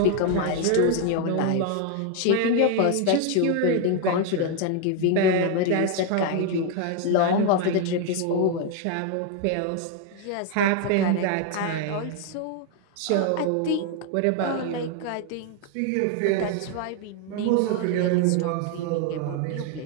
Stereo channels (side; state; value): both; different; correlation 0.01